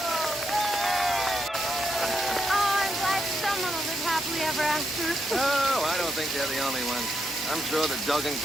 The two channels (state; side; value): normal; both; correlation 0.81